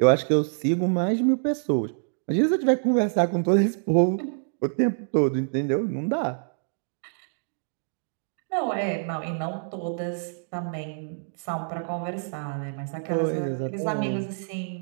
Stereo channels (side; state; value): left; silent; digital silence